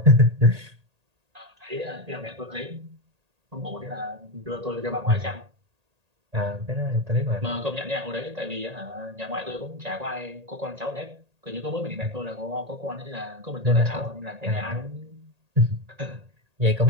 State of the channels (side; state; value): left; late; 1.8 ms